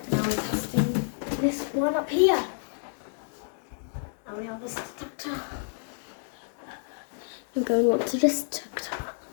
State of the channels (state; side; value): silent; right; digital silence